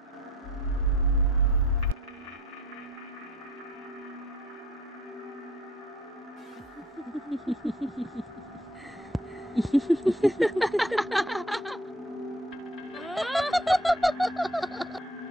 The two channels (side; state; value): both; normal; correlation 0.57